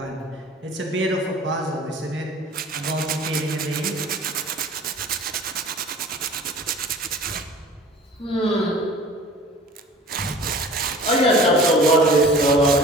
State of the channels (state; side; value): normal; both; correlation 0.44